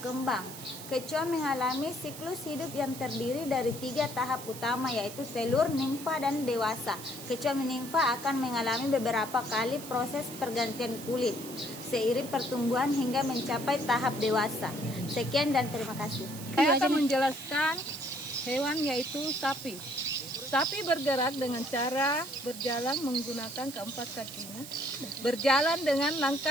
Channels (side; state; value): right; noise; hiss, 13 dB below the sound